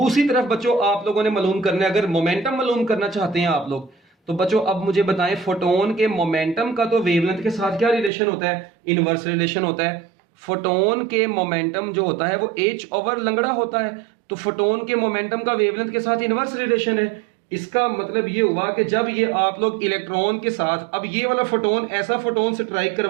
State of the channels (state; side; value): drops out; left; at 8.1 s